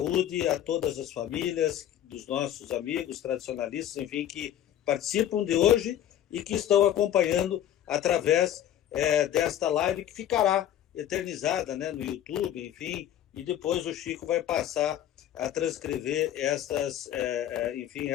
a todas as famílias dos nossos amigos tradicionalistas, enfim, que participam de hoje e que estão acompanhando através desta live que ficará eternizada, né, no YouTube, enfim, e depois o Chico vai passar a transcrever enfim,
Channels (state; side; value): quieter; right; 11.3 dB